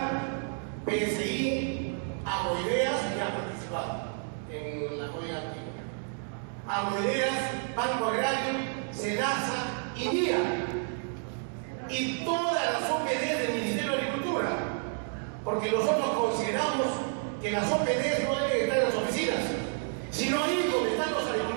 PSI, Agroideas, que ha participado en la joya antigua, Agroideas, Banco Agrario, SENASA y NIA, y todas las OPDs del Ministerio de Agricultura, porque nosotros consideramos que las OPDs no deben estar en las oficinas, sino ir donde están los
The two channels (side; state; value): left; silent; 58 dB below the other